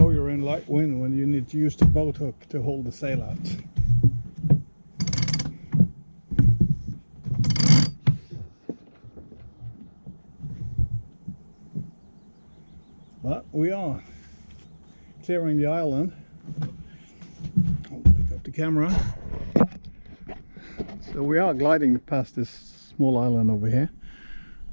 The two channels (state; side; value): inverted; both; correlation -1.00